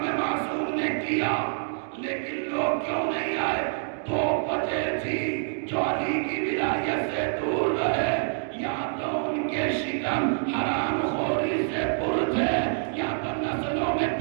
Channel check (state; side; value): silent; left; digital silence